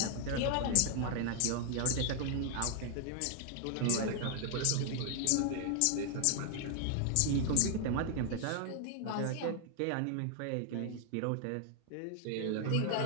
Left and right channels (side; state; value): both; different; correlation 0.00